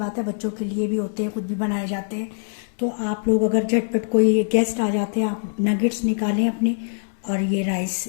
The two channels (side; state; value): right; silent; digital silence